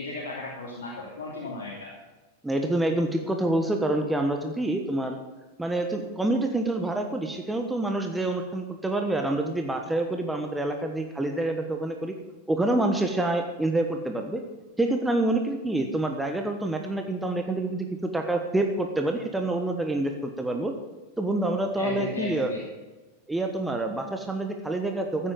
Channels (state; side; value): normal; both; correlation 0.63